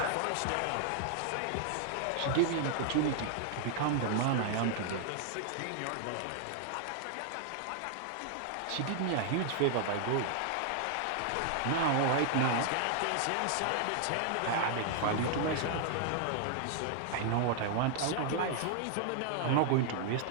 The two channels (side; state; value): both; different; correlation 0.00